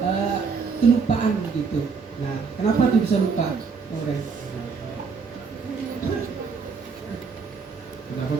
kelupaan begitu. Nah, kenapa tuh bisa lupa, Nauren? Kenapa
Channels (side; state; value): left; quieter; 5.3 dB